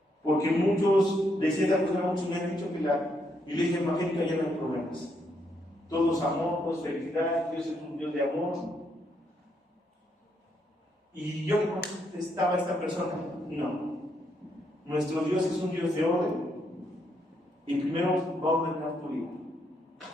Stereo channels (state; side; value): normal; both; correlation 0.76